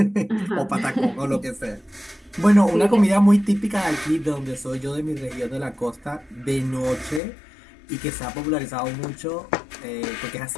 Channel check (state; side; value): drops out; right; at 7.2 s